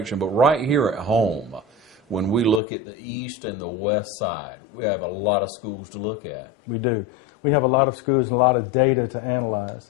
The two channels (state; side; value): drops out; right; at 2.6 s